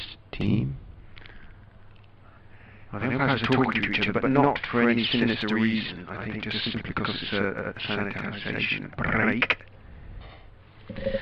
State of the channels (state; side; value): identical; both; correlation 1.00